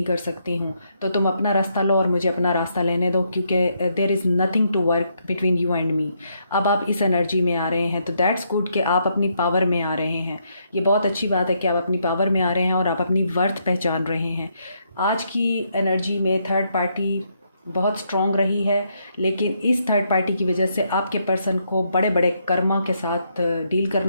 कर सकती हूँ, तो तुम अपना रास्ता लो और मुझे अपना रास्ता लेने दो, क्योंकि there is nothing to work between you and me. अब आप इस एनर्जी में आ रहे हैं तो दैट्स गुड कि आप अपनी पावर में आ रहे हैं। ये बहुत अच्छी बात है कि आप अपनी पावर में आ रहे हैं और आप अपनी वर्थ पहचान रहे हैं। आज की एनर्जी में थर्ड पार्टी बहुत स्ट्रॉन्ग रही है, लेकिन इस थर्ड पार्टी की वजह से आपके पर्सन को बड़े बड़े कर्मा के साथ डील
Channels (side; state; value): both; inverted; correlation -0.75